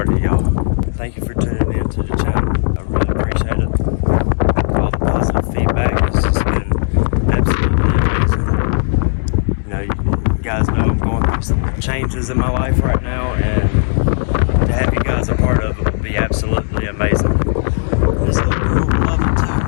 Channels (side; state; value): right; silent; 65 dB below the other